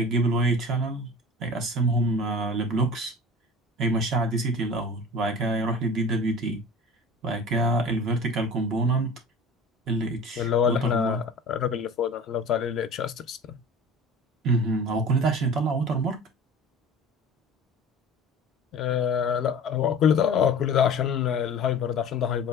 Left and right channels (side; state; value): both; normal; correlation 0.39